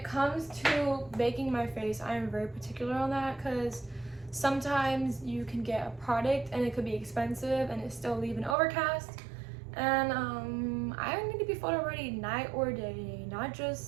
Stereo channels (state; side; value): drops out; left; at 8.6 s